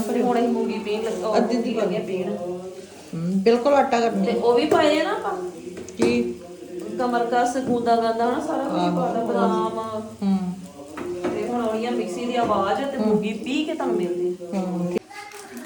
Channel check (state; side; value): identical; both; correlation 1.00